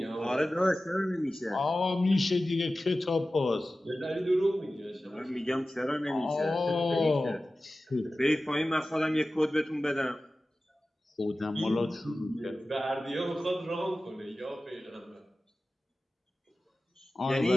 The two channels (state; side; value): normal; both; correlation 0.95